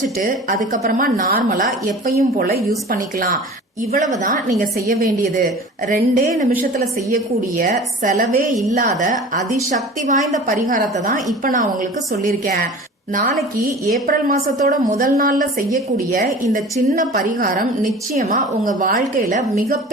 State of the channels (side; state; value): both; normal; correlation 0.40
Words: அதுக்கப்புறமா நார்மலா எப்பயும் போல யூஸ் பண்ணிக்கலாம். இவ்வளவுதான் நீங்க செய்ய வேண்டியது. 2 நிமிஷத்துல செய்யக்கூடிய செலவே இல்லாத அதிசக்தி வாய்ந்த பரிகாரத்தை தான் இப்ப நான் உங்களுக்கு சொல்லியிருக்கேன். நாளைக்கு ஏப்ரல் மாசத்தோட முதல் நாள்ல செய்யக்கூடிய இந்த சின்ன பரிகாரம் நிச்சயமா உங்க வாழ்க்கையில